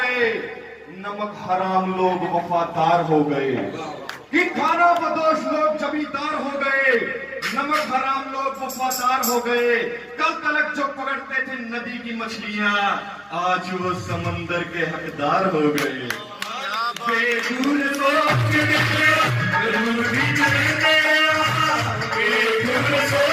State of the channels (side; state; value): both; identical; correlation 1.00